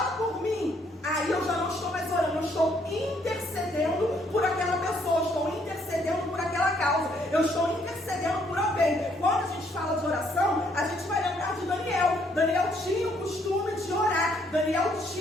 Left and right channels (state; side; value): normal; both; correlation 0.69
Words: eu estou intercedendo por alguém. Quando a gente fala de oração, a gente vai lembrar de Daniel. Daniel tinha o costume de orar. Daniel